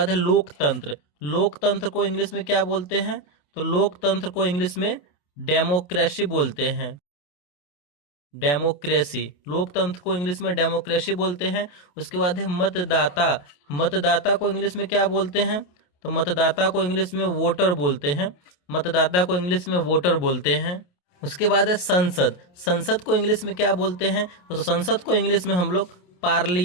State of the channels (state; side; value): late; right; 28 ms